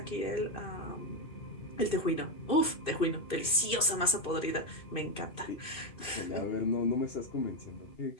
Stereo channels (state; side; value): late; right; 2.6 ms